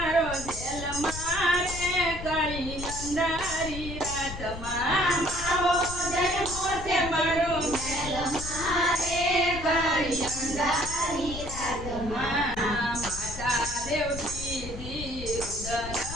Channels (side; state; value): left; noise; rumble, 9 dB below the sound